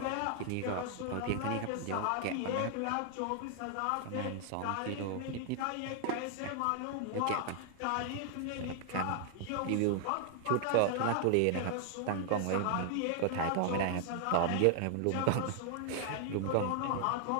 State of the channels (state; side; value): different; both; correlation 0.00